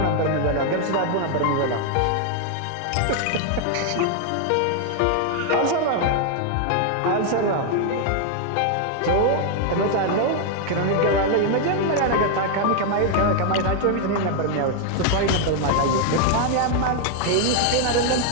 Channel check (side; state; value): both; different; correlation 0.00